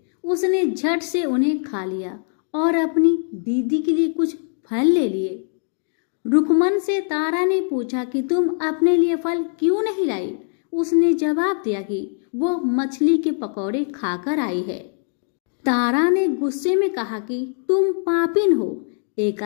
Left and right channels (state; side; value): silent; right; 64 dB below the other